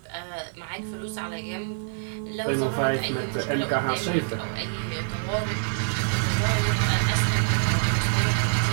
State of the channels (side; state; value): left; silent; digital silence